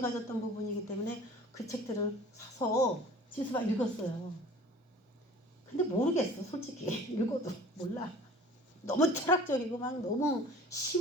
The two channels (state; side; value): normal; both; correlation 0.45